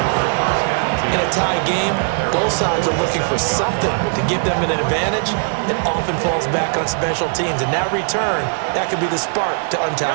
In a tie game, both sides are looking for something to give them an advantage. It often falls back on special teams. And that return, that could be the spark to untie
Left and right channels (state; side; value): silent; left; 67 dB below the other